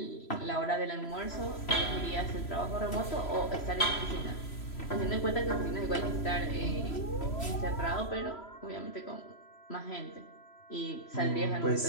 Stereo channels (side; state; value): right; late; 3.0 ms